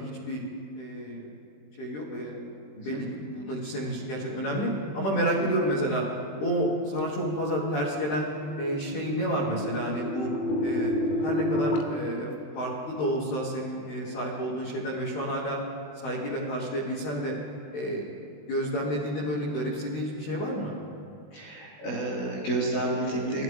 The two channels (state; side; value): late; right; 20 ms